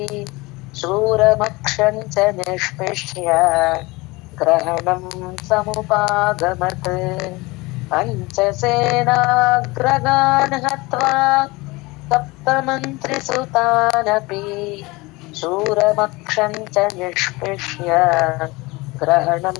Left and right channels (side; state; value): right; quieter; 23.0 dB